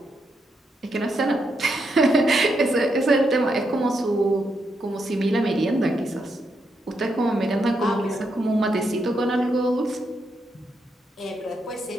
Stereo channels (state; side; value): normal; both; correlation 0.81